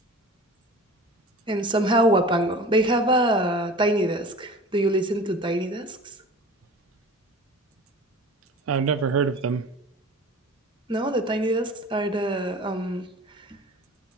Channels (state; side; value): normal; both; correlation 0.39